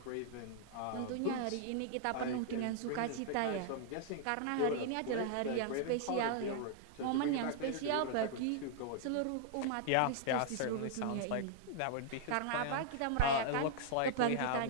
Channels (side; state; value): both; different; correlation -0.01